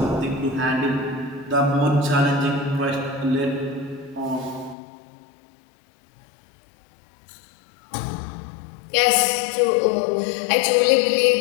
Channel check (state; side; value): drops out; right; at 4.8 s